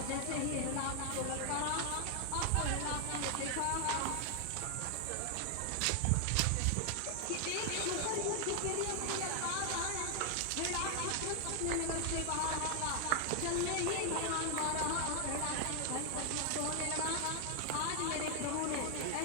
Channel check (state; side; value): different; both; correlation 0.00